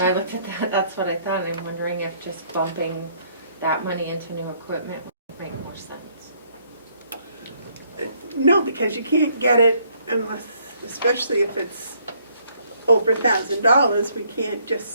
I looked at that, that's what I thought, and I'm wondering if just bumping that money into new equipment would make more sense. No, because you can't get it unless, especially if it's over $1,000, we can't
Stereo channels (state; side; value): inverted; both; correlation -0.66